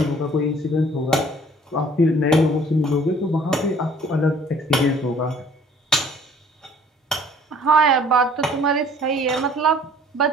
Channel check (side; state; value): both; normal; correlation 0.55